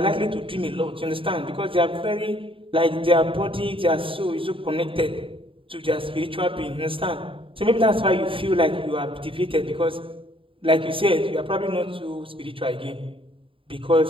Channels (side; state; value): left; late; 0.26 ms